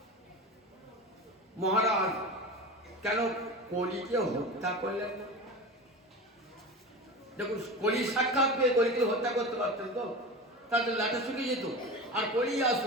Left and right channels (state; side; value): normal; both; correlation 0.29